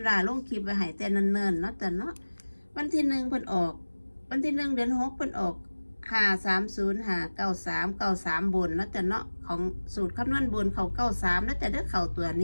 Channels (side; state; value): both; inverted; correlation -1.00